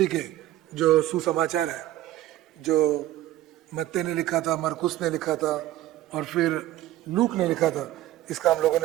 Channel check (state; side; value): quieter; left; 14.4 dB